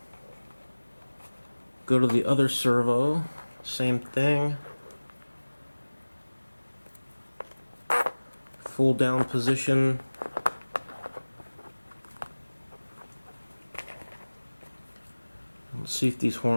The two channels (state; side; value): inverted; both; correlation -1.00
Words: go to the other servo, same thing, full down position, let's see if these